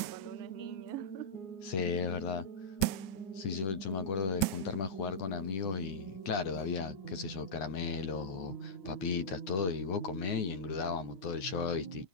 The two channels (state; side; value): late; right; 9.4 ms